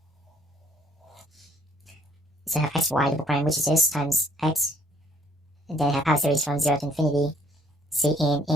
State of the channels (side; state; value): both; normal; correlation 0.64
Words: So I have xy double prime, which is this, times x. And then I have power series from 0 to infinity, c in